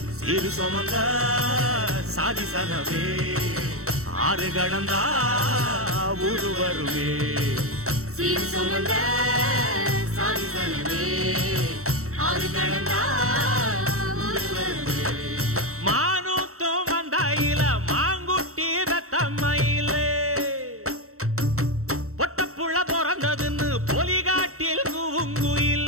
சிறு சுமந்த சாதி சனமே ஆறு கடந்தா ஊரு வருமே சீர் சுமந்த சாதி சனமே ஆறு கடந்தா ஊரு வருமே மானூத்தும் வந்தாயில மாங்குட்டி ரத்தம்மையில பொட்டப்புள்ள பிறந்ததுன்னு பொலிகாட்டில்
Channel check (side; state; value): left; late; 0.64 ms